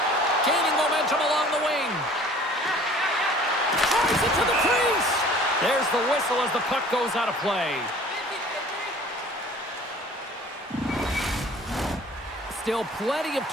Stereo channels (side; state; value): both; normal; correlation 0.49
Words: Gaining momentum along the wing. Drives it to the crease. There's the whistle as the puck goes out of play. Still plenty of